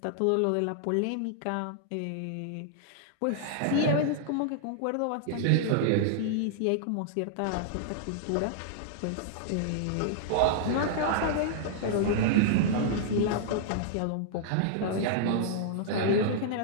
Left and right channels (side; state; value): both; different; correlation -0.01